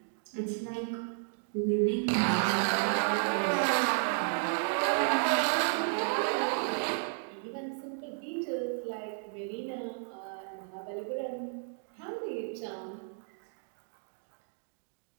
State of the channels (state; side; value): silent; left; digital silence